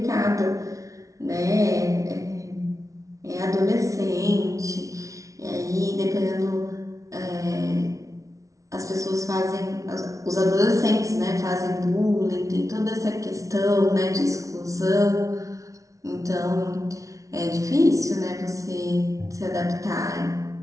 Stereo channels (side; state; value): left; late; 0.16 ms